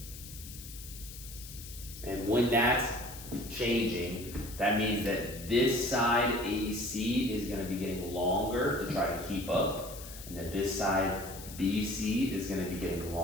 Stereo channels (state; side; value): noise; left; hiss, 14 dB below the sound